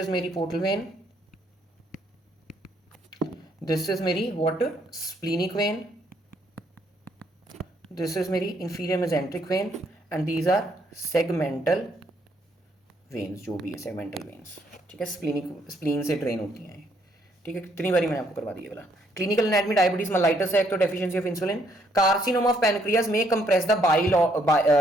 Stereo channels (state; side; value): normal; both; correlation 0.70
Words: मेरी पोर्टल वेन, दिस इज मेरी what, splenic vein, this is मेरी inferior mesenteric vein, and these are segmental veins, जो भी है सेगमेंटल वेन्स। ठीक है, spleen से ड्रेन होती हैं। ठीक है, कितनी बारी मैंने आपको करवा दिया वाला। क्लिनिकल एनाटॉमी, डायबिटीज मेलाइटस है, एक तो deficiency of insulin, carcinoma of pancreas में compress the bile